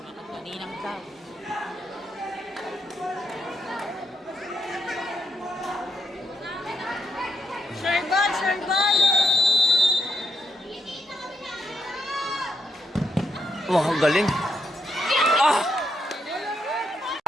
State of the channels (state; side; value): normal; both; correlation 0.79